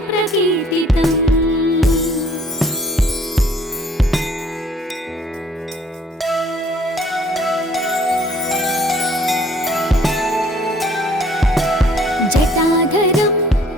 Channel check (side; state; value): both; normal; correlation 0.58